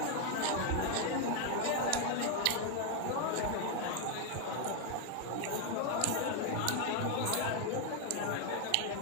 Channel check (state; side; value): different; both; correlation 0.01